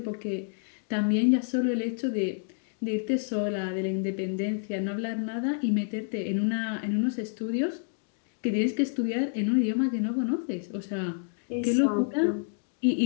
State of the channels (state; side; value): silent; right; digital silence